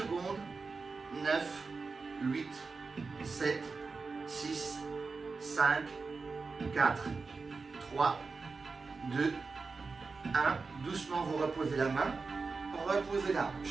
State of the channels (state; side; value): quieter; left; 4.4 dB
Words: 9, 8, 7, 6, 5, 4, 3, 2, 1. Doucement, vous reposez la main. Reposez la